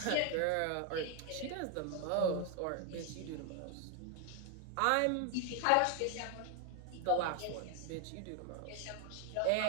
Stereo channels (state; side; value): different; both; correlation 0.01